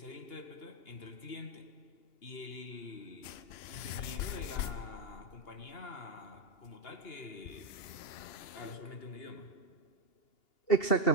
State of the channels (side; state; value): right; late; 3.0 ms